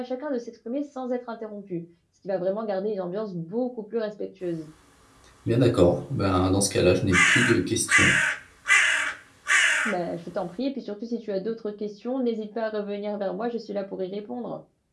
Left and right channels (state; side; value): identical; both; correlation 1.00